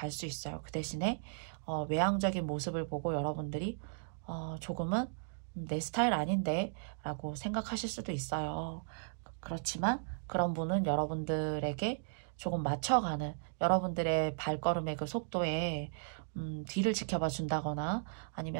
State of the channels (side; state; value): left; silent; digital silence